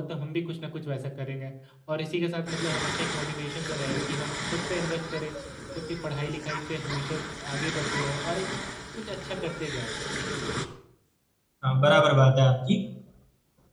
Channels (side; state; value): both; identical; correlation 1.00